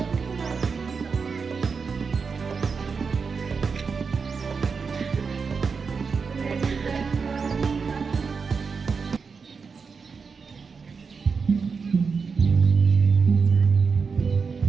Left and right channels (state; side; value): quieter; left; 5.3 dB